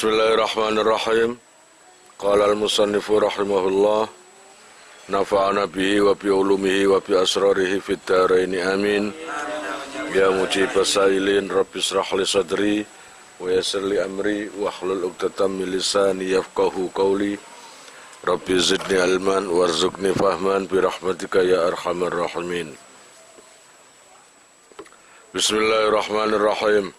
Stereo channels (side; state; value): both; identical; correlation 1.00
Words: Qala al-musannifu rahimahullah, nafa'ana bihi wa bi ulumihi wa bi asrarihi fid dharaini amin. Ya mujibas sailin rabbi israh li sadri wa yassir li amri wa hlul 'uqdatam min lisani yafqahu qawli. Rabbi zidni ilman warzuqni fahman bi rahmatika ya arhamar rahimin. Bismillahirrahmanirrahim.